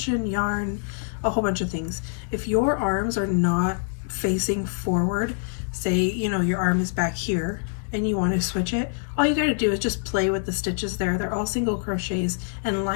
yarn, a whole bunch of things. If your arms are not facing forward, say, you know, your arm is back here and you want to switch it, all you got to do is just play with the stitches there. They're all single crochets, and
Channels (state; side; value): silent; right; digital silence